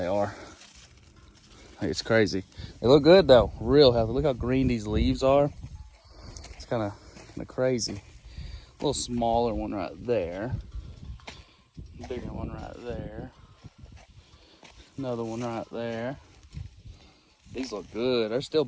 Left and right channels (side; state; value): both; identical; correlation 1.00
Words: are. Like, it's crazy. They look good though, real healthy. Look how green these leaves are. It's kind of crazy. A little smaller one right there. Bigger one right there. Another one right there. These look good. There's still